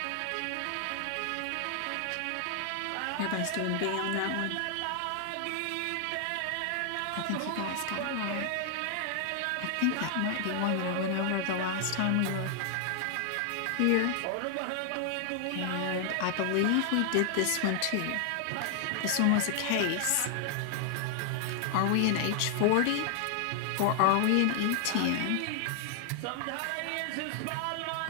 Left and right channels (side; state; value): both; different; correlation 0.00